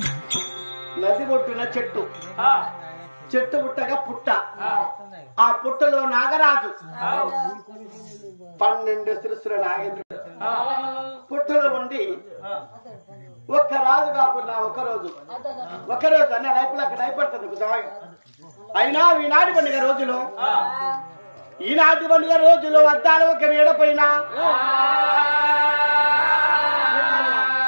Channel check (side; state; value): both; inverted; correlation -1.00